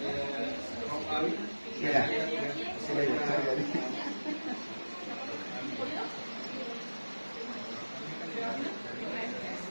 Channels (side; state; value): both; inverted; correlation -1.00